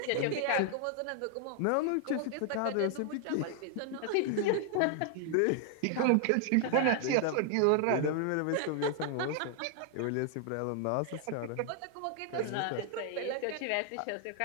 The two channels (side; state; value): both; different; correlation 0.00